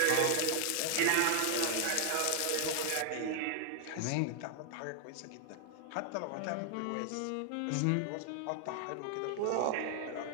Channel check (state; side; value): different; both; correlation 0.00